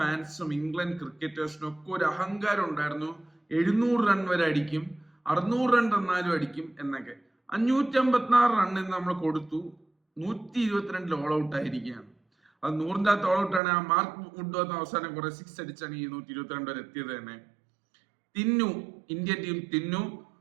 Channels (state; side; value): drops out; left; at 13.6 s